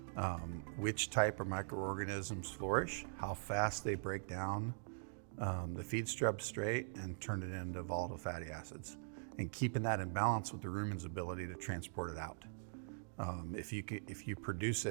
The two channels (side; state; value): left; silent; digital silence